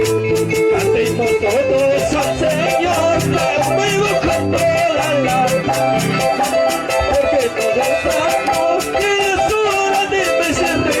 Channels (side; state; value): both; identical; correlation 1.00